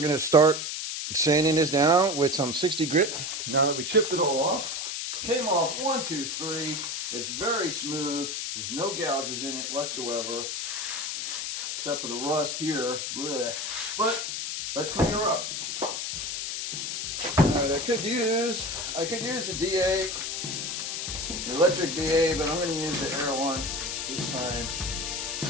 going to start sanding this down with some 60 grit. Now that we chipped it all off, came off 1, 2, 3. It's very smooth. There's no gouges in it whatsoever, except for the rust here. Blech. But let's clean her up. All right, I could use the DA, the electric DA, but I'm going to use the air one this time.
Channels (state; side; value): noise; left; hiss, 3 dB below the sound